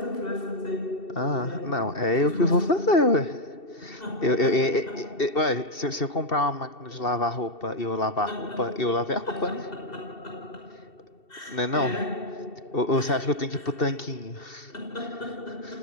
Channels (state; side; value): late; right; 2.7 ms